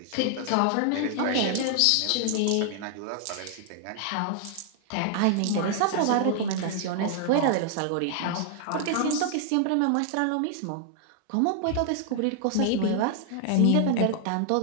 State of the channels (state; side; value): different; both; correlation 0.00